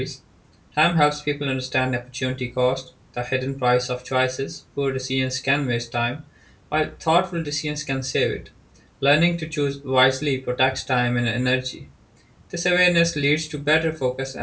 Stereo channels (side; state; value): both; identical; correlation 1.00